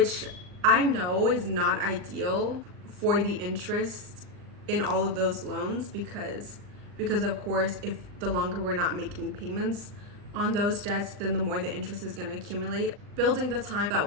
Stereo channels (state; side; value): late; left; 39 ms